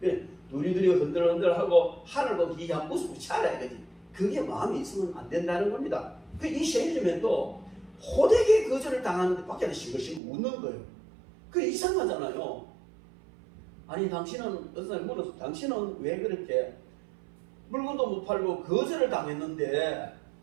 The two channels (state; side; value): drops out; left; at 10.2 s